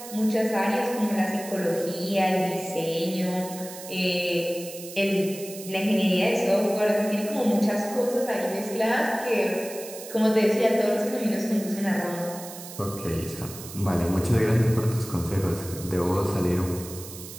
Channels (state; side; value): noise; right; hiss, 13 dB below the sound